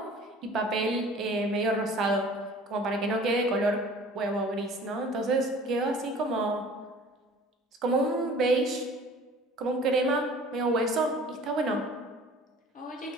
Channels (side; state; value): both; normal; correlation 0.47